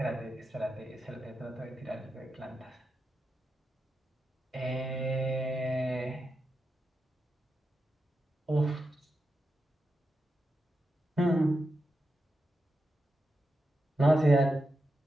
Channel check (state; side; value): normal; both; correlation 0.88